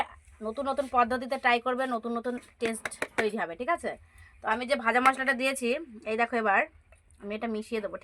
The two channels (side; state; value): both; identical; correlation 1.00